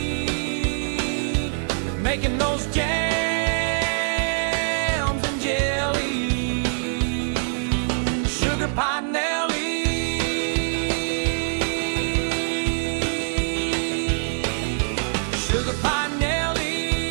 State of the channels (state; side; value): silent; left; digital silence